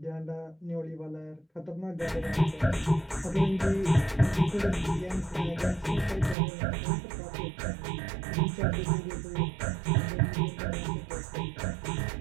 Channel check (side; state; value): left; drops out; at 6.4 s